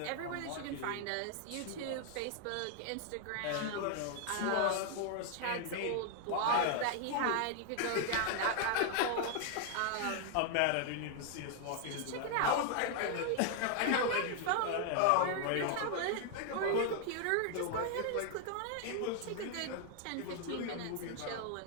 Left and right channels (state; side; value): different; both; correlation 0.00